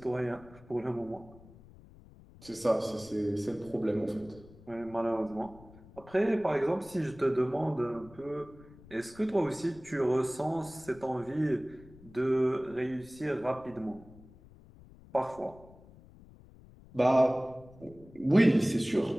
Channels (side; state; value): left; noise; rumble, 22 dB below the sound